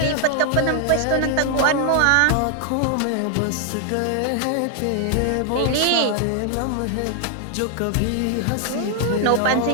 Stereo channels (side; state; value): both; different; correlation 0.00